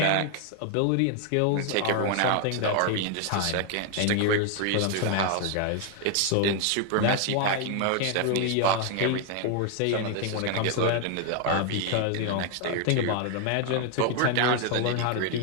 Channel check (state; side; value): different; both; correlation 0.00